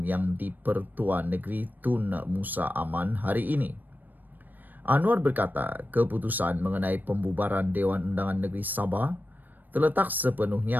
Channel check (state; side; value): late; left; 0.088 ms